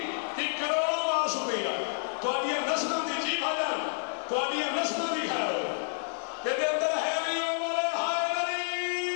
ایک کروڑوں بار شکریہ. تو اب یہ نسلوں دی جی بھاجان تو اب یہ نسلوں دی خیر ہو. تیرے اندر ہے نہیں وہ بولے ہائے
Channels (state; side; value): silent; right; digital silence